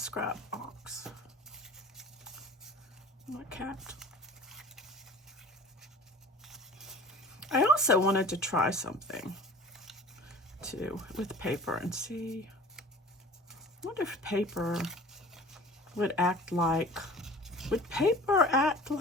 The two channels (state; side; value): normal; both; correlation 0.42